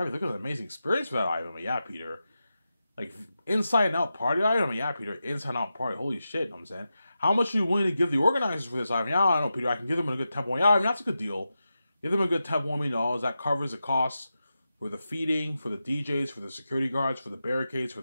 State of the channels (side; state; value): both; inverted; correlation -0.91